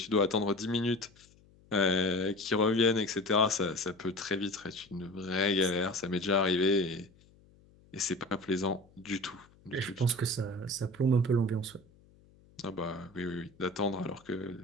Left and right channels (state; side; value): noise; left; hum, 28 dB below the sound